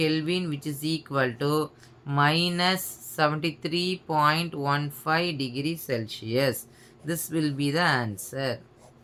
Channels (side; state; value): both; identical; correlation 1.00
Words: which is equal to minus 73.15 degree Celsius. This will be the answer.